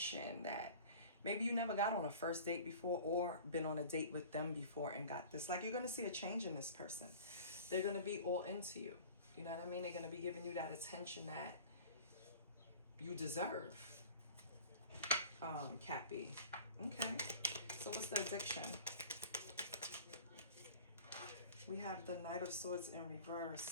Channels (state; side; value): inverted; both; correlation -0.42